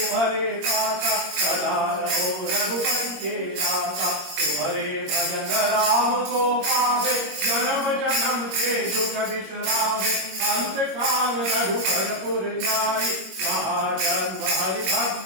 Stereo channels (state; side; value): late; left; 21 ms